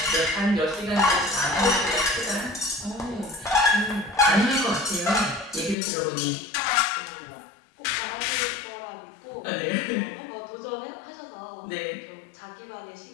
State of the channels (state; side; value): drops out; right; at 5.8 s